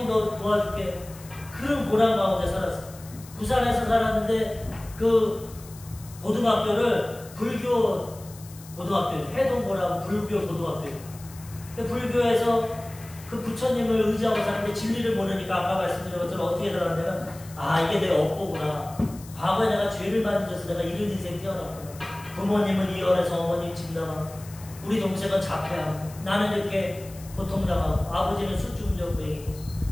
너 도와줄게. 그런 고난 가운데 살았어. 부산에서 살았는데 그 고등학교를 불교 고등학교, 해동고라고 불교 고등학교. 불교에서 그 부처님을 의지하고 사는데 진리를 모르니까 아까 말씀드린 것처럼 어떻게 살았냐면 이게 내 업보구나. 과거에 내가 죄를 많이 져서 내가 이런 인생 태어났구나. 부모님은 이혼해서 어머님 집 나가고 우리 동생은 자폐하고 나는 이렇게 고통당하고 아버지는 술중전부행이고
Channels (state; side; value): noise; left; hiss, 20 dB below the sound